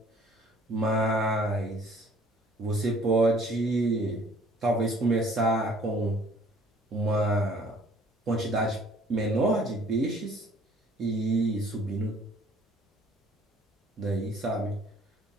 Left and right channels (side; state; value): both; normal; correlation 0.56